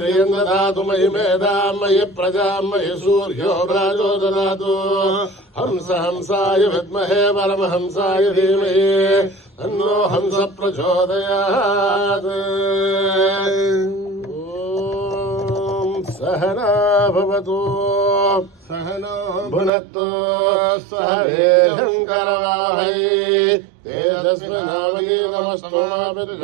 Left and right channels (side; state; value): left; drops out; at 19.7 s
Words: దదాతు మయి మేధాం మయి ప్రజాం మయి సూర్యో భ్రాజో దదాతు హంస హంసాయ విద్మహే పరమహంసాయ ధీమహి తన్నో హంస ప్రచోదయాత్. ఓం సహనా భవతు సహనో భునక్తు సహ వీర్యం కరవావహై తేజస్వినావధీతమస్తు మా